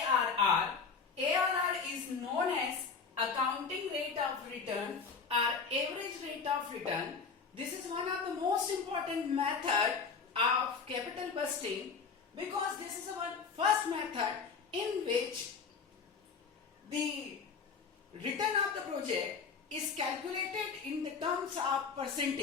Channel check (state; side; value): quieter; right; 5.5 dB